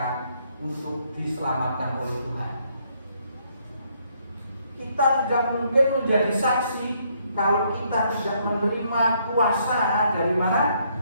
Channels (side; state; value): both; inverted; correlation -0.70